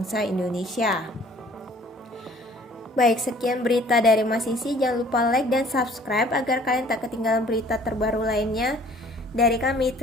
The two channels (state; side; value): normal; both; correlation 0.54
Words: Indonesia. Baik, sekian berita dari Mas Sisi. Jangan lupa like dan subscribe agar kalian tak ketinggalan berita terbaru lainnya dari kami.